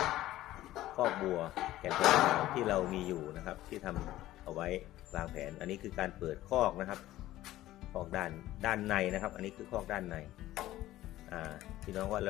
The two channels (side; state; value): right; quieter; 15.1 dB